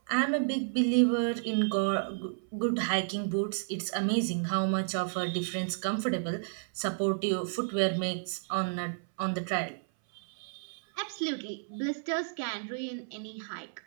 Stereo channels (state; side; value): silent; left; 57 dB below the other